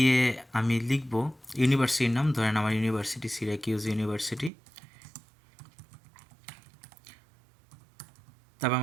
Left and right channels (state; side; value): drops out; left; at 4.5 s